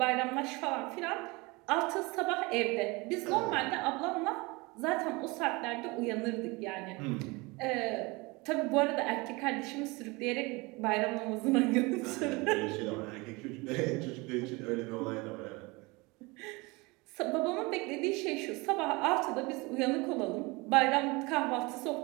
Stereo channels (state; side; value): quieter; left; 25.1 dB